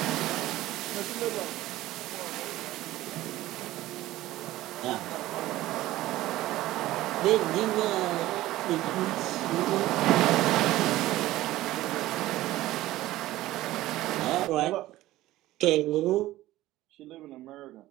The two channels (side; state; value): left; quieter; 16.1 dB